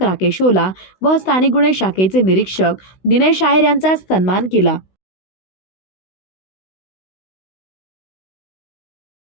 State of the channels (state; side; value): late; right; 16 ms